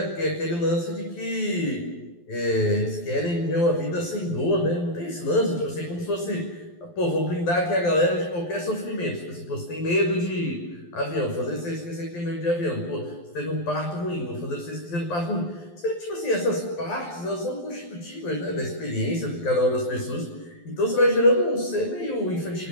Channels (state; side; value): late; right; 12 ms